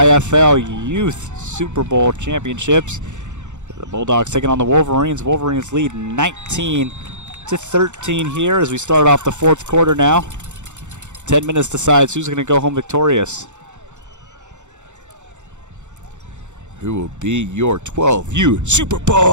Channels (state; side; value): late; left; 0.84 ms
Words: Youth Super Bowl Championships. The Bulldogs taking on the Wolverines. Wolverines lead 19-13 here as we start off the fourth quarter now. 10 minutes decides who's going to go home victorious. Who will be your 12U Super